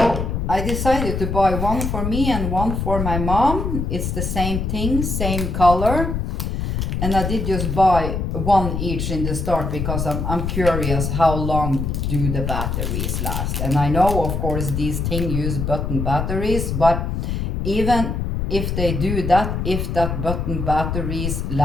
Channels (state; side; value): noise; left; rumble, 2 dB below the sound